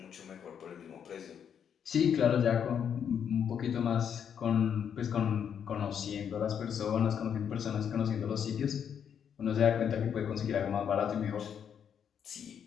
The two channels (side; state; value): right; quieter; 8.1 dB